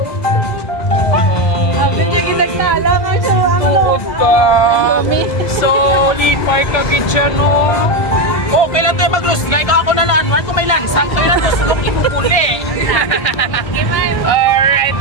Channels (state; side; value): late; right; 1.6 ms